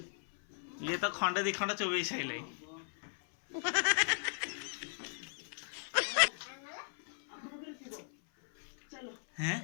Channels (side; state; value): right; silent; 53 dB below the other